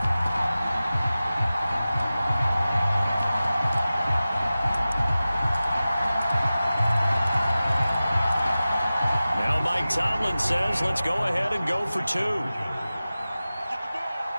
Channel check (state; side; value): inverted; both; correlation -0.96